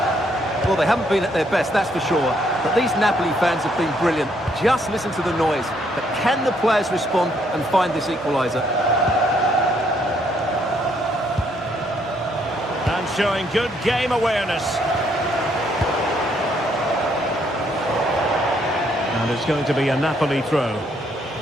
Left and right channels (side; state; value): both; normal; correlation 0.70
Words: Well, they haven't been at their best, that's for sure. But these Napoli fans have been brilliant. Just listen to the noise. But can the players respond and find this equaliser? And showing good game awareness. And it's going to be a Napoli throw.